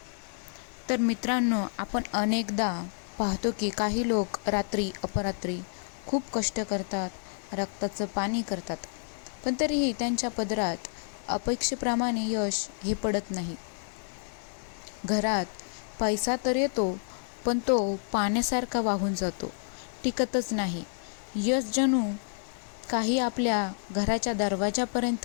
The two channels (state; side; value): silent; right; digital silence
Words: तर मित्रांनो, आपण अनेकदा पाहतो की काही लोक रात्री अपरात्री खूप कष्ट करतात, रक्ताचं पाणी करतात, पण तरीही त्यांच्या पदरात अपेक्षेप्रमाणे यश हे पडत नाही. घरात पैसा तर येतो, पण तो पाण्यासारखा वाहून जातो, टिकतच नाही. यश जणू काही आपल्या घराच्या